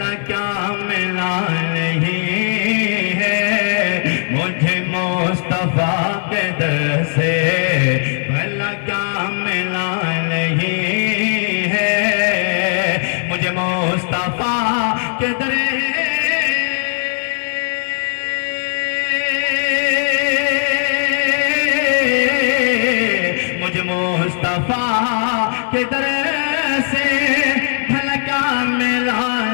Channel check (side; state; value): right; silent; 67 dB below the other